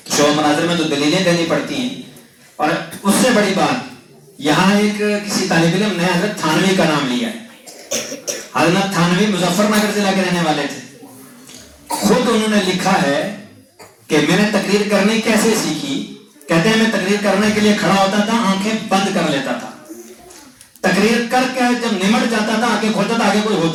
شعبہ مناظرہ میں تو دلیلیں دینی پڑتی ہیں. اور اس سے بڑی بات یہاں ایک کسی طالب علم نے حضرت تھانوی کا نام لیا ہے. حضرت تھانوی مظفر نگر ضلع کے رہنے والے تھے. خود انہوں نے لکھا ہے کہ میں نے تقریر کرنی کیسے سیکھی. کہتے ہیں میں تقریر کرنے کے لیے کھڑا ہوتا تھا, آنکھیں بند کر لیتا تھا, تقریر کر کے جب نمٹ جاتا تھا آنکھیں کھولتا تھا, آگے کوئی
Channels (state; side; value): identical; both; correlation 1.00